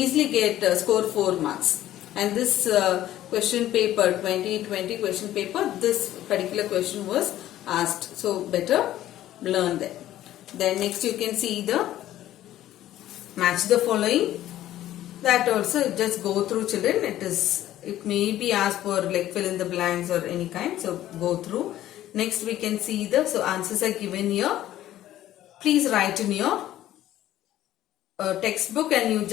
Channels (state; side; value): quieter; right; 13.4 dB